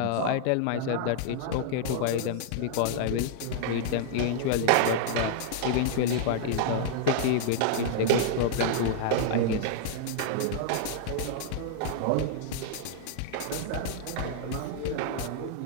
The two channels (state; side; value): different; both; correlation -0.01